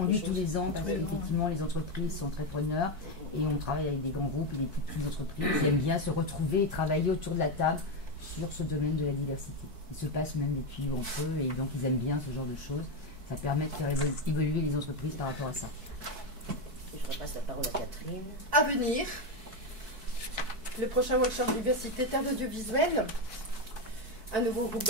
tous les ans, parce qu'effectivement les entreprises sont très preneurs, et on travaille avec des grands groupes et des toutes petites entreprises qui aiment bien se retrouver et travailler autour de la table sur ce domaine de la diversité. Ils se passent même des tuyaux entre eux, et donc ils aiment bien ce genre de choses. Ça permet de faire évoluer les entreprises par rapport à ça. Je repasse la parole à Catherine. À venir, le prochain workshop diversité terre audiovisuelle, un nouveau groupe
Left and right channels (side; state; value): left; late; 4.6 ms